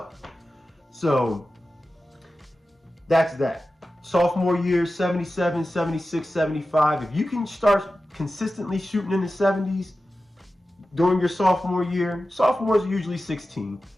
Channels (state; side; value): normal; both; correlation 0.94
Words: So that's that. Sophomore year, 77, 76, 75. If you can start consistently shooting in the 70s during your sophomore year, sophomores are usually 16.